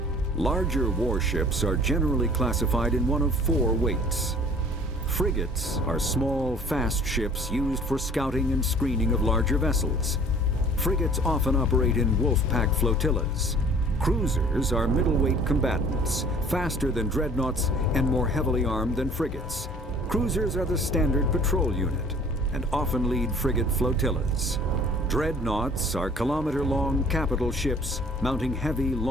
Larger warships are generally classified in one of four weights. Frigates are small, fast ships used for scouting and screening of larger vessels. Frigates often operate in wolf-pack flotillas. Cruisers are middleweight combatants, faster than dreadnoughts and more heavily armed than frigates. Cruisers are the standard patrol unit and often lead frigate flotillas. Dreadnoughts are kilometer-long capital ships mounting heavy,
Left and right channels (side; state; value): both; normal; correlation 0.51